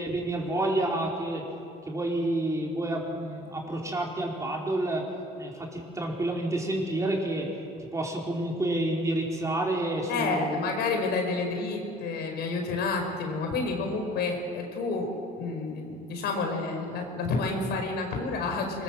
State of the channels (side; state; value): both; normal; correlation 0.50